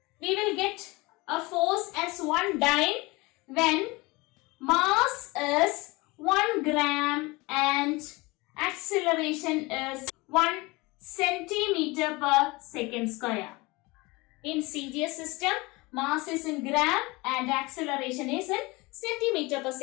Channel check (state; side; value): quieter; right; 23.6 dB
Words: We will get a force as 1 dyne when mass is 1 gram and acceleration is 1 centimeter per second square. In CGS system, mass is in gram and acceleration is in centimeter per